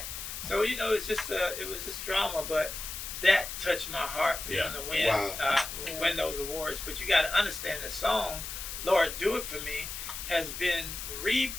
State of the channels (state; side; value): noise; left; hiss, 7 dB below the sound